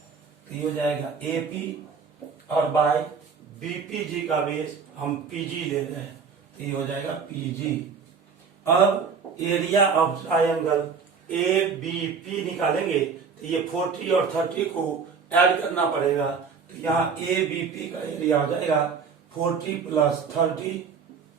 तो ये हो जाएगा ए पी और बाय बीपीजी का बेस हम पीजी ले रहे हैं तो ये हो जाएगा पीजी। अब area of triangle A B P निकालेंगे तो ये 40 और 30 को ऐड करना पड़ेगा तो यहाँ ए बी पी का एरिया हो जाएगा 40 प्लस 30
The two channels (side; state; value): left; quieter; 5.7 dB